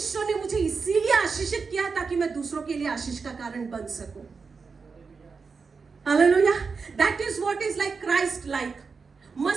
ने मुझे इसीलिए आशीषित किया ताकि मैं दूसरों के लिए आशीष का कारण बन सकूं। Hallelujah. That is what is like Christ like.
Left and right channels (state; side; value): quieter; left; 5.0 dB